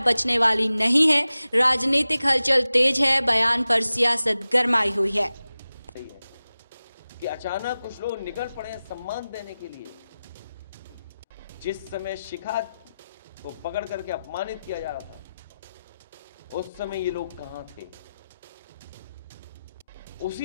बचने वाली नहीं है। राजनीतिक हलचल तेज है, बयान पर सियासत गरमाई हुई है। कि अचानक कुछ लोग निकल पड़े हैं सम्मान देने के लिए। जिस समय शिखा को पकड़ करके अपमानित किया जा रहा था, उस समय ये लोग कहां थे?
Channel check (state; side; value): inverted; both; correlation -0.95